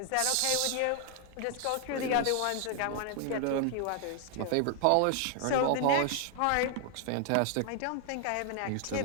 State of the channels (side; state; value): both; different; correlation 0.00